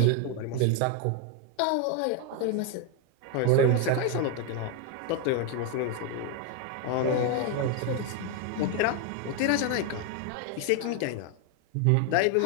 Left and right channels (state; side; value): different; both; correlation 0.01